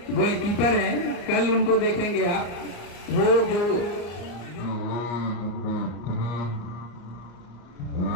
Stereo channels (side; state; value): right; late; 34 ms